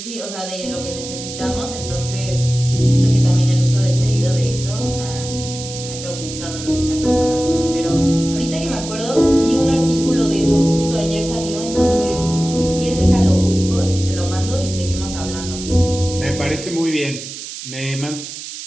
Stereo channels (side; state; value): right; noise; hiss, 10 dB below the sound